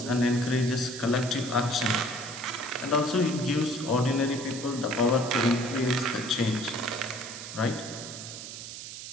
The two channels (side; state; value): right; noise; hiss, 10 dB below the sound